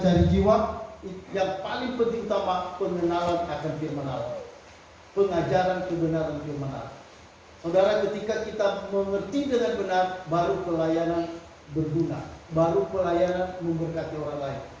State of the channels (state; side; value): identical; both; correlation 1.00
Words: jiwa. Yang paling penting utama pengenalan akan firman Allah, pengajaran kebenaran firman Allah. Saudara, ketika kita mengerti dengan benar, baru pelayanan berguna, baru pelayanan memberkati orang lain.